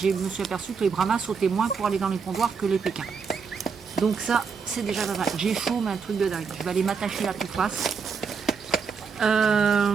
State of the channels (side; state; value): left; quieter; 5.7 dB